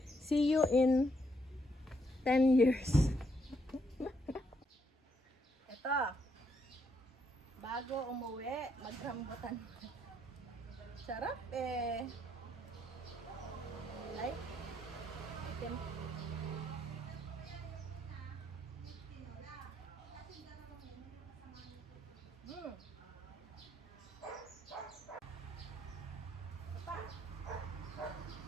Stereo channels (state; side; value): normal; both; correlation 0.74